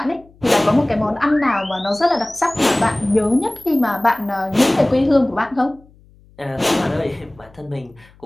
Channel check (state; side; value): noise; left; hum, 28 dB below the sound